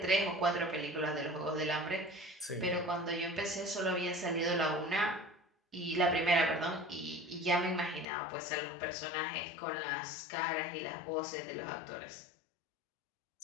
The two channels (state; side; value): drops out; right; at 8.1 s